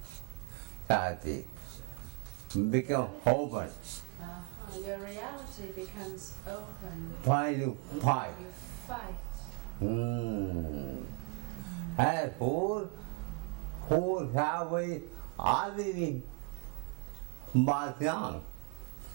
tragedy become open. Your reality becomes open. Why you fight? You fight. And who have already but wrong.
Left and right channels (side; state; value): left; quieter; 35.3 dB